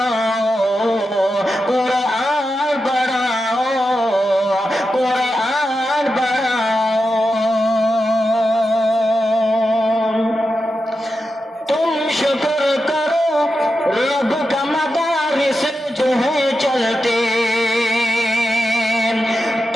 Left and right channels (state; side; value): normal; both; correlation 0.89